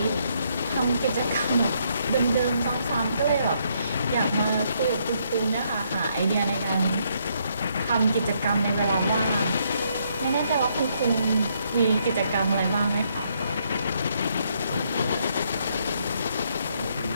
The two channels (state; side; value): inverted; both; correlation -0.73